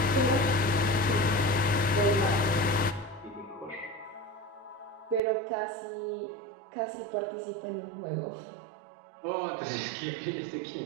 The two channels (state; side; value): drops out; left; at 5.2 s